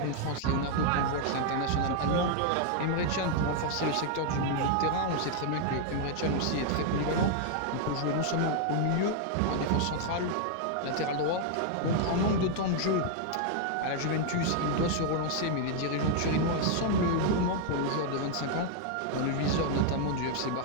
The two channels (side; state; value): both; different; correlation 0.00